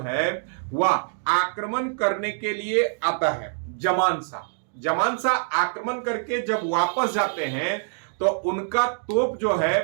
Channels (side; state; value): left; silent; digital silence